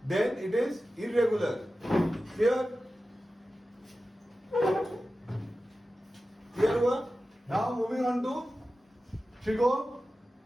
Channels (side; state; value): both; normal; correlation 0.94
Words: then it is irregular. Clear? Clear हुआ? Now moving on to trigo.